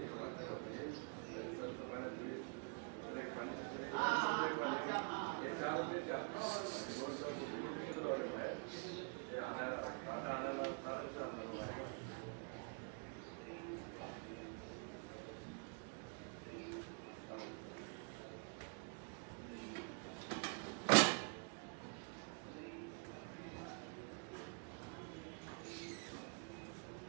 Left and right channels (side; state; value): left; quieter; 39.5 dB